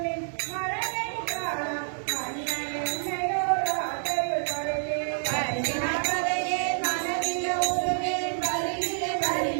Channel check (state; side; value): silent; left; 59 dB below the other